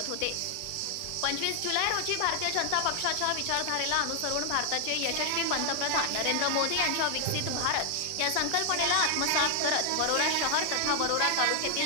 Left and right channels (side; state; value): both; different; correlation 0.00